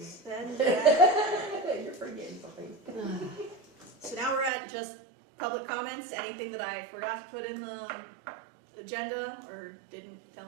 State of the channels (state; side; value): drops out; left; at 4.5 s